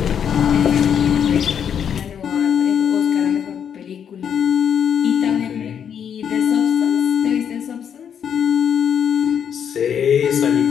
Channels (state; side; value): quieter; right; 8.2 dB